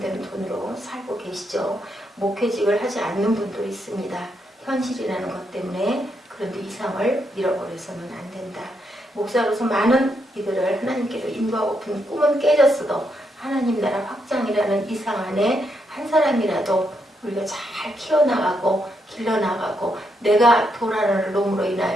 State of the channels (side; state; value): both; normal; correlation 0.79